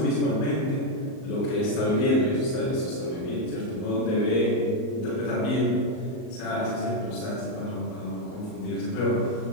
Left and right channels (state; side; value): late; right; 38 ms